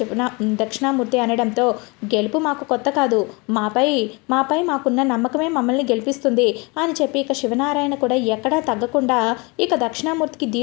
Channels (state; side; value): quieter; right; 27.9 dB